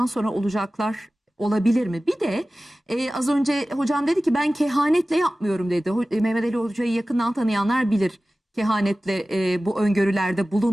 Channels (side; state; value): both; normal; correlation 0.96